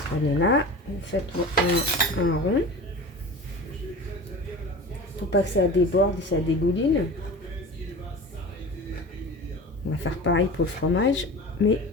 là, vous faites un rond. Faut pas que ça déborde et ça dégouline. On va faire pareil pour le fromage, mais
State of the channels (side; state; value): both; normal; correlation 0.34